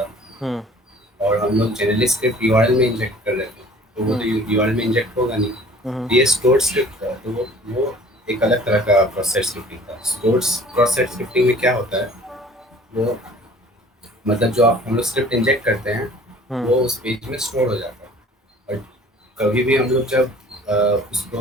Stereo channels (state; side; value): normal; both; correlation 0.50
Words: है, हम्म और हम लोग जनरली स्क्रिप्ट यूआरएल में इंजेक्ट कर रहे थे, तो वो तो हम्म यूआरएल में इंजेक्ट होगा नहीं। हम्म तो ये स्टोर्ड स्क्रिप्ट था, तो वो एक अलग तरह का प्रोसेस स्क्रिप्टिंग था। स्टोर्ड प्रोसेस स्क्रिप्टिंग में क्या होता है, वो मतलब जो आप हम लोग स्क्रिप्ट इंजेक्ट करते हैं हम्म वो उस पेज में स्टोर हो जाता है, और कभी भी हम लोग जब उसको